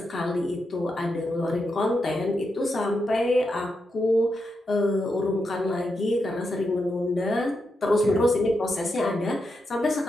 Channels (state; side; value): normal; both; correlation 0.85